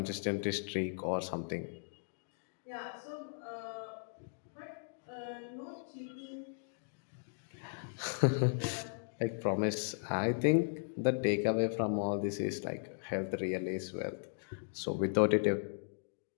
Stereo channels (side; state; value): right; silent; digital silence